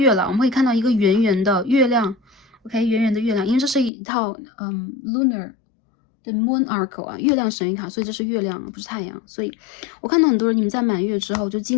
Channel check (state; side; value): drops out; right; at 3.9 s